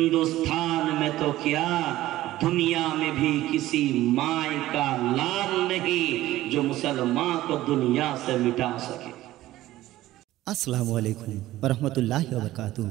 में तो क्या दुनिया में भी किसी माय का लाल नहीं जो मुसलमान को दुनिया से मिटा सके। আসসালামু আলাইকুম ওয়া রাহমাতুল্লাহি ওয়া বারাকাতুহু।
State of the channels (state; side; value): quieter; left; 15.5 dB